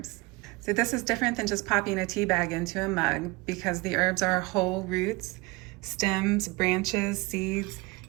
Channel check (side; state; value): left; quieter; 23.6 dB